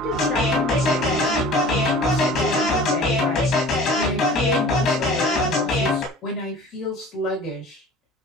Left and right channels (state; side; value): normal; both; correlation 0.43